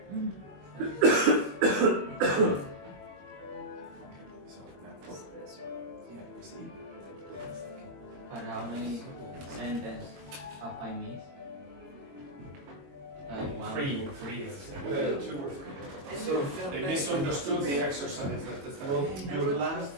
But how many sentences have I missed? Like one. Three. 2 or 3. So They misunderstood the exercise at the start. well, your last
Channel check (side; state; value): left; late; 21 ms